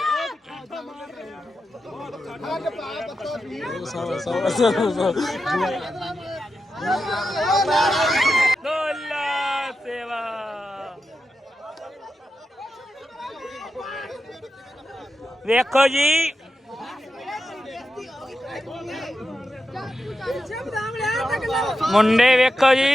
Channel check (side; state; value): both; normal; correlation 0.89